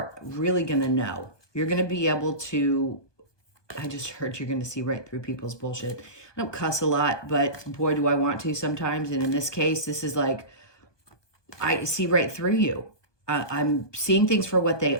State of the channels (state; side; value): late; right; 1.2 ms